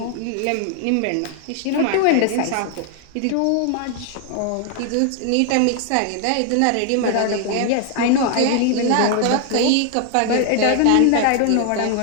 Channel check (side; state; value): both; different; correlation 0.00